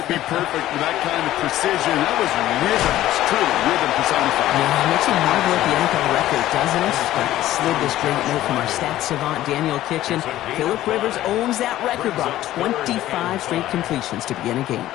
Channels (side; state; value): right; quieter; 14.2 dB